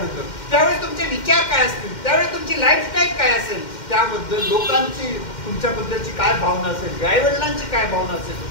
त्यावेळी तुमचे विचार काय असतील, त्यावेळी तुमची लाईफस्टाईल काय असेल, त्याबद्दल लोकांची तुमच्याबद्दलची काय भावना असेल, आईवडिलांची काय भावना असेल,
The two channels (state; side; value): late; right; 2.1 ms